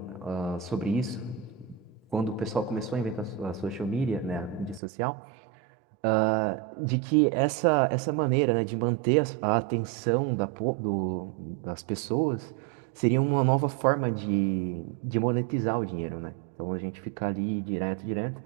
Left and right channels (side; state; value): left; drops out; at 4.8 s